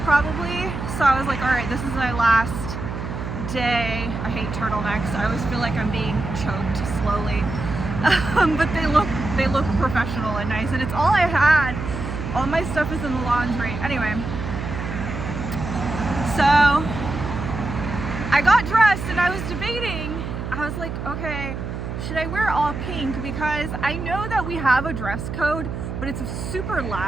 probably. So I was like, all right, this is my last day. I hate turtlenecks. I always feel like I'm being choked slowly. But they look professional and nice, and it's all I had. All my stuff is in the laundry. Anyway, so I got dressed and I was debating. I was like, okay, should I wear all pink? Because I know that we have a dress code, but it's super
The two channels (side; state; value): right; noise; hum, 6 dB below the sound